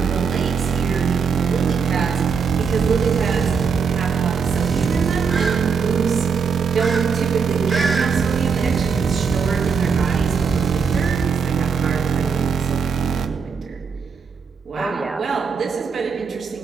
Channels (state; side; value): quieter; left; 5.9 dB